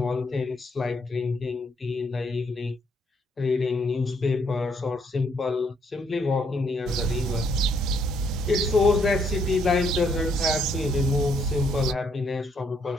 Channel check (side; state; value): both; normal; correlation 0.71